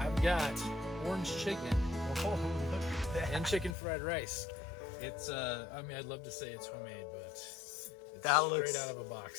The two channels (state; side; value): drops out; right; at 3.8 s